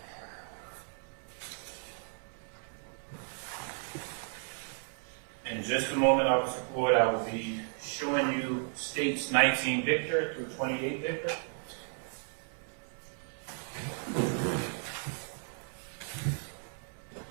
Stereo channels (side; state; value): left; silent; 55 dB below the other